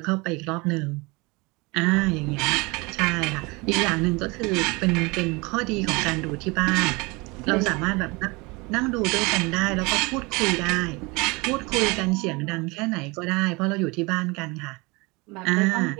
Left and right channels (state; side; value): quieter; left; 25.8 dB